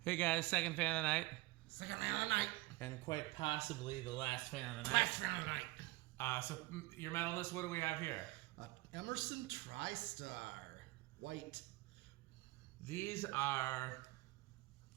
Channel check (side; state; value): left; quieter; 20.7 dB